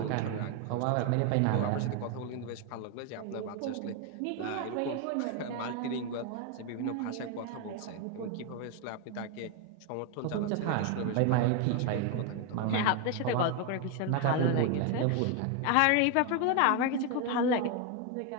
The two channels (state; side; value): different; both; correlation 0.01